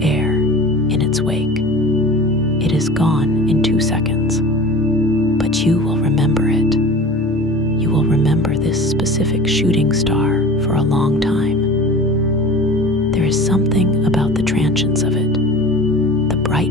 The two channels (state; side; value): normal; both; correlation 0.38